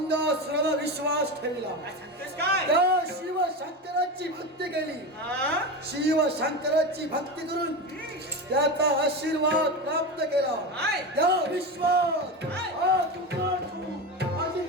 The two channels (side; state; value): both; normal; correlation 0.21